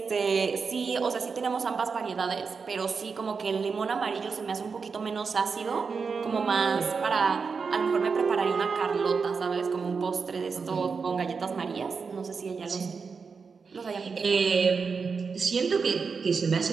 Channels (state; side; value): quieter; left; 5.2 dB